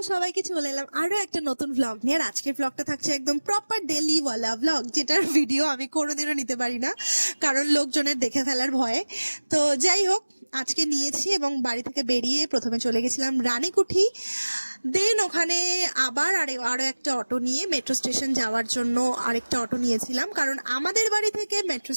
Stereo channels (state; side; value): inverted; both; correlation -1.00